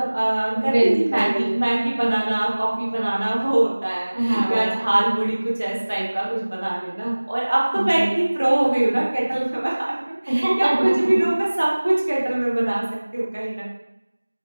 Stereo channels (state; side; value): inverted; both; correlation -1.00